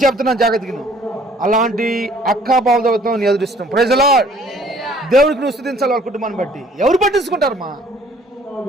చెప్తున్నాను జాగ్రత్తగా. అలాంటి అక్కా బావతో నీ ఎదురిస్తాం. Praise the lord. దేవుడికి నువ్వు స్తుతించాలి. వాళ్ళ కుటుంబాన్ని బట్టి ఎవరు పట్టించుకుంటారు?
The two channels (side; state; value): both; normal; correlation 0.57